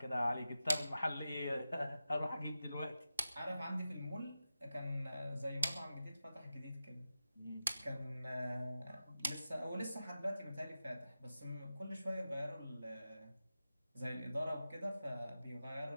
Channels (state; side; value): inverted; both; correlation -0.92